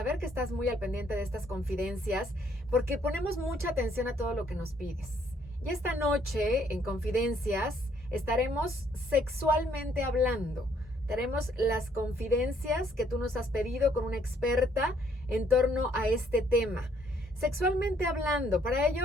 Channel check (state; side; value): normal; both; correlation 0.67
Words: que estás muy al pendiente de estas confidencias, porque ponemos mucha atención a todo lo que nos pides. Y esta noche, en Confidencias, estaremos sexualmente hablando. Tenemos las confidencias que tú nos has pedido con una experta en torno a este tema. Sexualmente hablando, para